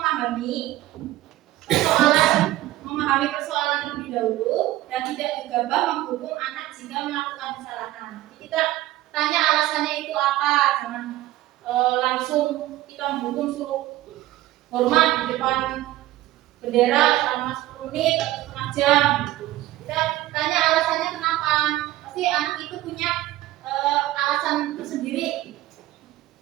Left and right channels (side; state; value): left; quieter; 15.8 dB